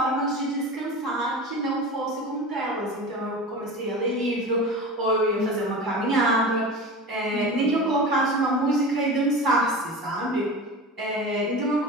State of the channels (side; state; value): both; normal; correlation 0.31